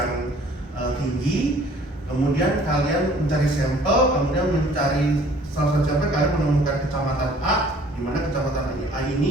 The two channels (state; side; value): normal; both; correlation 0.54